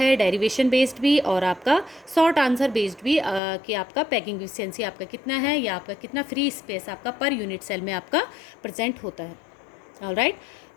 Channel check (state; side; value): drops out; right; at 3.4 s